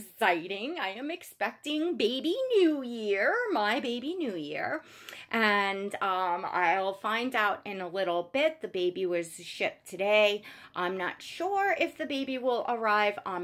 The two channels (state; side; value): identical; both; correlation 1.00